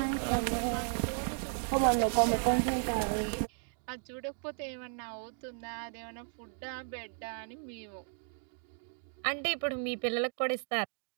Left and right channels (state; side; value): silent; left; digital silence